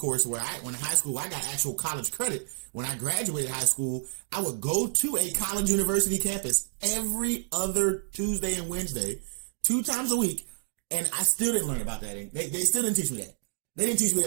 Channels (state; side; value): silent; left; digital silence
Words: where when in high school, I got actual college credit. When I graduated high school, I would go to a college university campus every other Tuesday and Wednesday, 2 times a week, and I still didn't learn about that. They still didn't teach me that. They didn't teach me